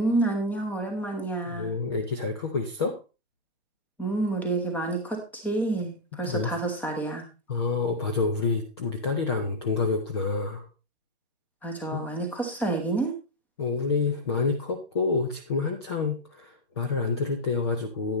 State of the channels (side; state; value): both; normal; correlation -0.02